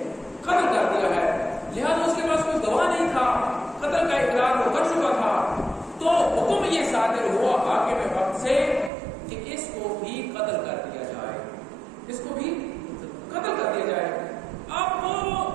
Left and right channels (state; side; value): drops out; left; at 8.9 s